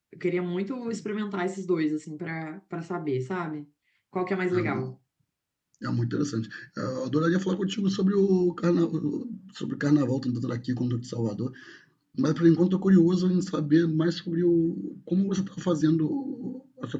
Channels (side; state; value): both; identical; correlation 1.00